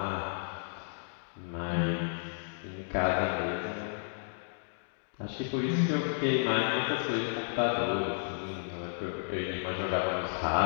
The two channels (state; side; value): silent; right; digital silence